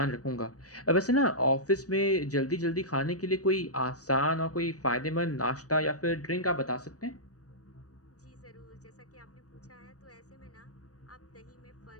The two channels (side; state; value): right; late; 0.66 ms